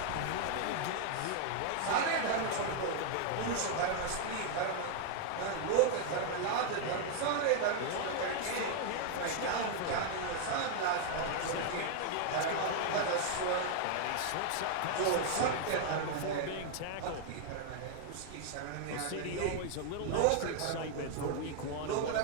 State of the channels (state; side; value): different; both; correlation 0.00